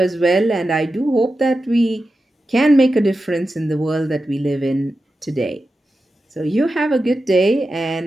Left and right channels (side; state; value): both; normal; correlation 0.91